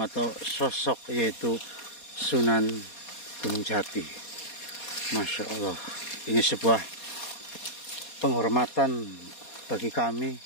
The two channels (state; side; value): late; right; 4.2 ms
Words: atau sosok, yaitu Sunan Gunung Jati. Masya Allah, ini sebuah penghormatan bagi kami